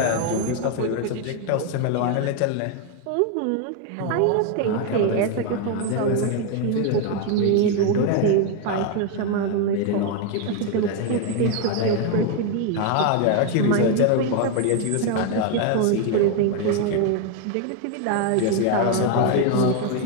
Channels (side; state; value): both; different; correlation 0.01